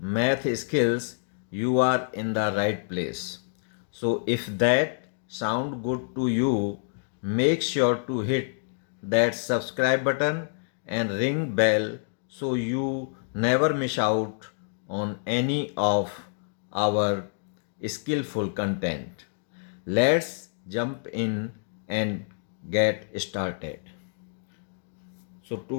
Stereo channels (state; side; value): silent; right; digital silence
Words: skills, you are in the right place. So if that sound good to you, make sure to hit that subscribe button and ring bell so you never miss out on any of our skillful content. Let's jump in and get started. So